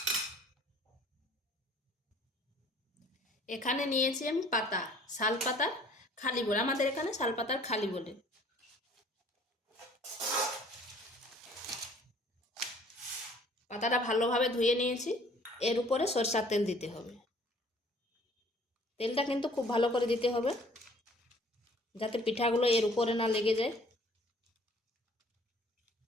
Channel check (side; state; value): both; normal; correlation 0.55